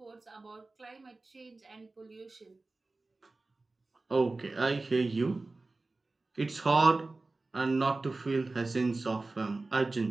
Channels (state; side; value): quieter; left; 3.3 dB